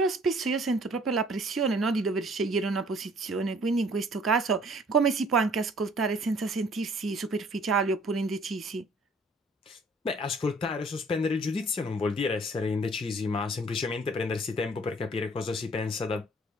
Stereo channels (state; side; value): normal; both; correlation 0.56